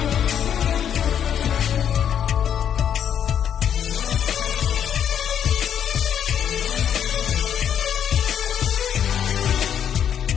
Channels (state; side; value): quieter; right; 9.0 dB